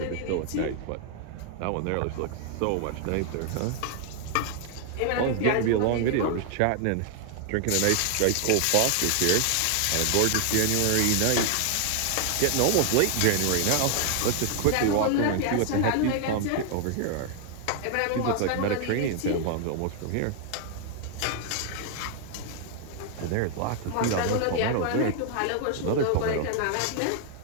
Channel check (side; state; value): both; different; correlation 0.00